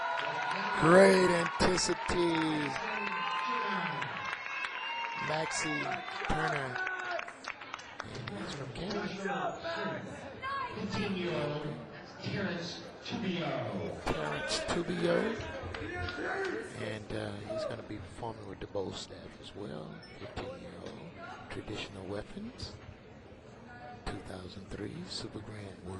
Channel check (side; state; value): both; identical; correlation 1.00